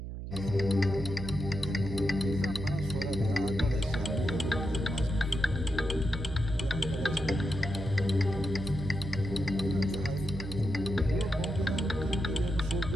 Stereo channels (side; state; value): right; noise; hum, 7 dB below the sound